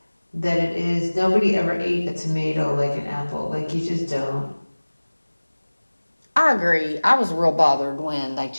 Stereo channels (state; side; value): inverted; both; correlation -1.00